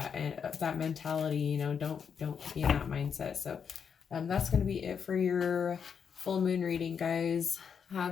and that mentality, you know, don't be in that mindset. So that's going to be it for your full moon reading, guys.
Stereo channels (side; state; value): right; quieter; 6.9 dB